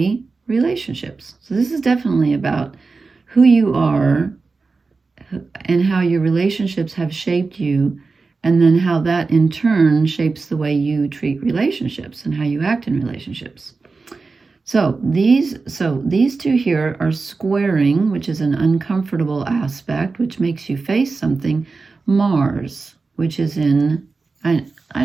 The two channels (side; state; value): left; quieter; 4.1 dB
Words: relationships. So this is definitely about who you are and how your relationships have shaped you, and then how that in turn shapes the way you treat relationships and how you act in relationships. So these two here are squaring, which is an uncomfortable aspect, which makes you face something. Mars, which is in, I